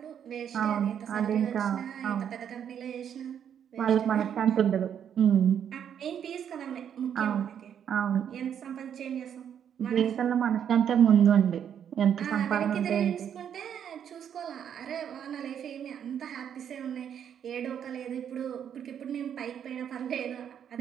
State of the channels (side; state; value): left; quieter; 8.8 dB